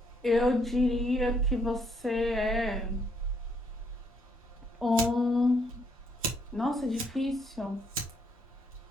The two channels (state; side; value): normal; both; correlation 0.71